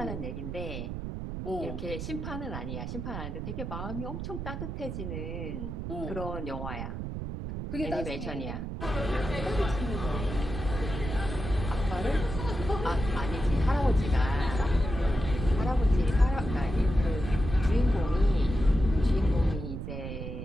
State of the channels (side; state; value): right; noise; rumble, 5 dB below the sound